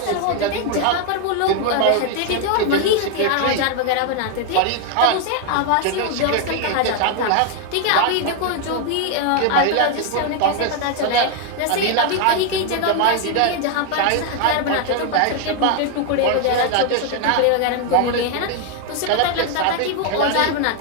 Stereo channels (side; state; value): both; different; correlation 0.01